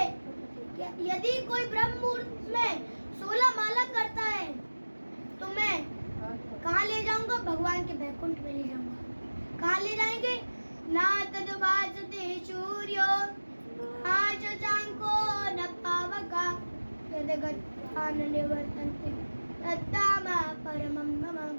कि यदि कोई ब्रह्म मुहूर्त में 16 माला करता है तो मैं कहाँ ले जाऊंगा? भगवान के बैकुंठ में ले जाऊंगा। कहाँ ले जाएंगे? ना तद्भासते सूर्यो ना शशांको न पावका यद्गत्वान् निवर्तन्ते तद्धाम परमं मम।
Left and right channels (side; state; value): both; inverted; correlation -1.00